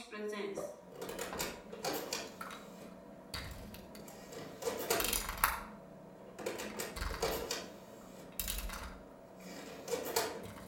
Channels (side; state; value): both; identical; correlation 1.00